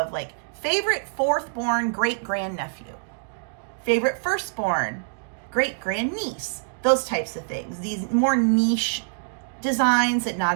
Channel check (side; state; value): left; silent; digital silence